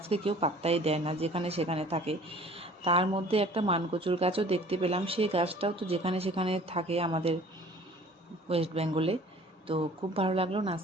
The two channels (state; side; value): normal; both; correlation 0.49